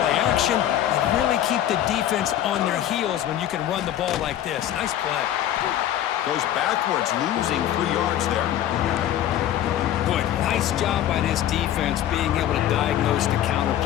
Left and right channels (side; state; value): right; quieter; 11.7 dB